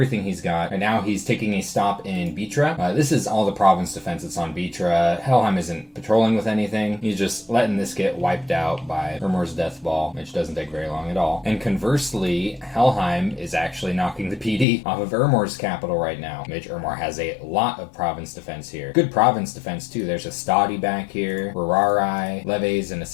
he's got, and now he's taking a stop in Bitra. This is all the province defense that's on Bitra. Helheim isn't patrolling with anything. He's just letting this get wiped out by Ermor's death ball, which doesn't take very long at all. And conversely, Helheim is actually knocking the PD off of Ermor's capital right now, which Ermor has a lot of province defense here. Good province defense too. There's a Stadi back here, Rararai, Leves, and a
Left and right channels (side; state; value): right; drops out; at 14.7 s